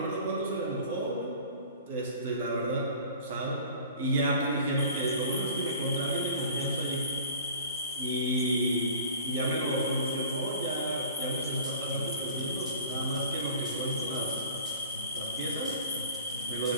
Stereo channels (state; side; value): inverted; both; correlation -0.44